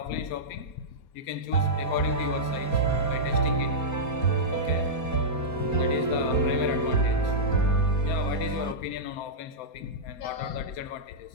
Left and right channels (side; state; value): right; late; 4.3 ms